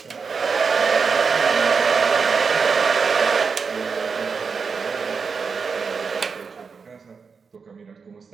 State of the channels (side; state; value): left; quieter; 5.3 dB